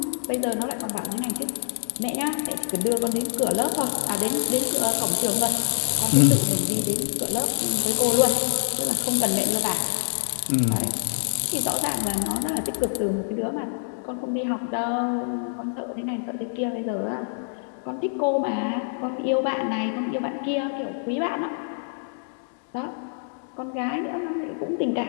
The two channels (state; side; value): silent; right; digital silence